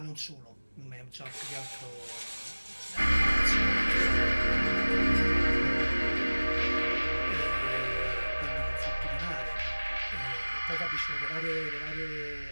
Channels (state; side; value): inverted; both; correlation -1.00